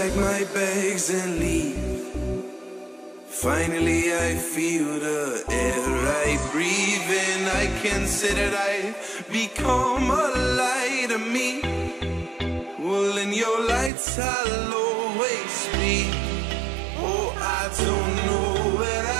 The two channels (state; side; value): drops out; left; at 13.9 s